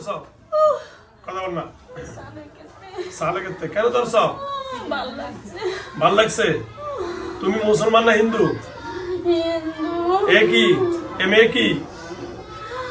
কথা বল না। সালেকেতে কেন ধরছ? ভাল লাগছে। তুমি মুসলমান না হিন্দু? একই। এ মেয়ে কি?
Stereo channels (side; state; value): both; identical; correlation 1.00